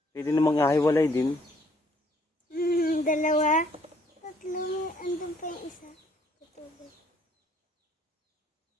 Pwede namang ahiwalay din. 2, 3, andun pa yung isa. Tutubig.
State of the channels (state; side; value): normal; both; correlation 0.64